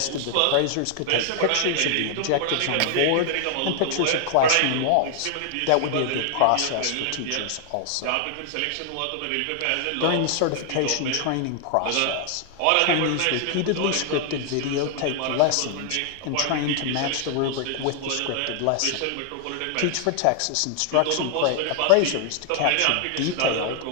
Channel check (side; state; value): both; different; correlation 0.00